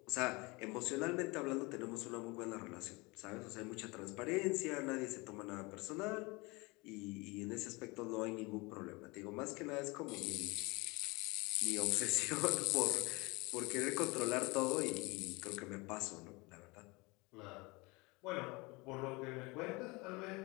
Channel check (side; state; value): right; quieter; 25.5 dB